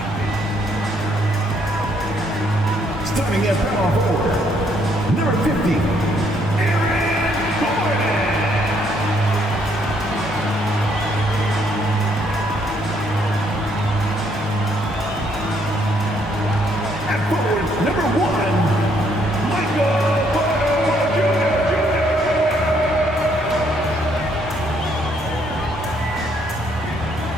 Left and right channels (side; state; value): both; normal; correlation 0.69